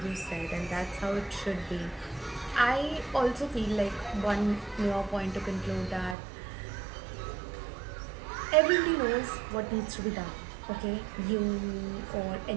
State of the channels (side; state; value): left; drops out; at 6.2 s